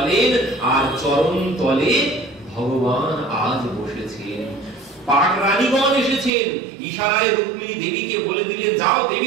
আর চরণ তলে ভগবান আজ বসেছেন। পাক রানীগণ এসেছেন, ইশারায় রুক্মিণী দেবীকে বলে দিলেন, যাও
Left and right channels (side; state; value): left; drops out; at 6.3 s